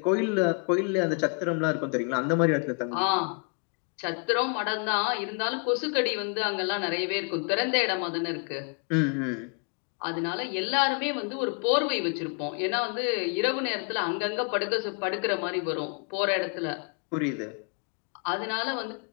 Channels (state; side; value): quieter; right; 40.0 dB